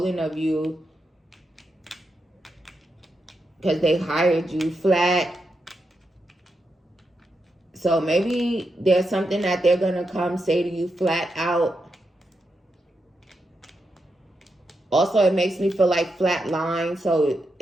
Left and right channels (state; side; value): normal; both; correlation 0.85